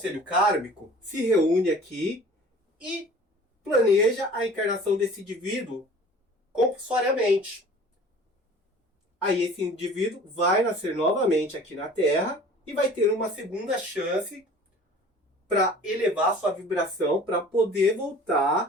kármico se reúne aqui e planeja a encarnação desse indivíduo compulsoriamente. Aí esse indivíduo vai nascer novamente aqui na Terra e vai ter uma segunda chance para elevar sua vibração para poder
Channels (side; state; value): both; normal; correlation 0.46